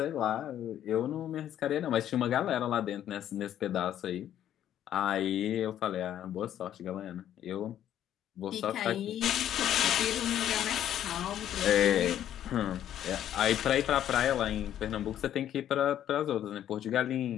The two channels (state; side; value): quieter; right; 11.0 dB